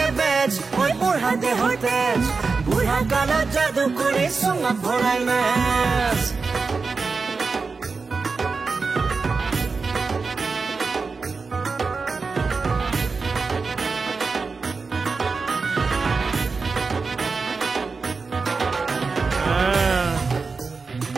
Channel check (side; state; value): left; quieter; 4.5 dB